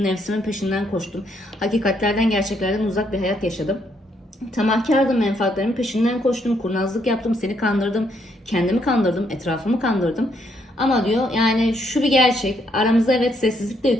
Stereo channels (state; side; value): normal; both; correlation 0.73